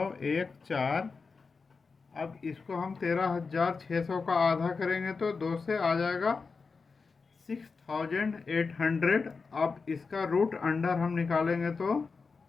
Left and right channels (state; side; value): quieter; right; 4.7 dB